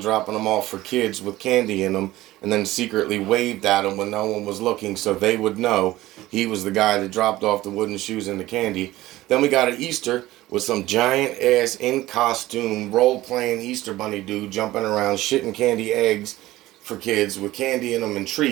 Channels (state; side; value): quieter; left; 16.7 dB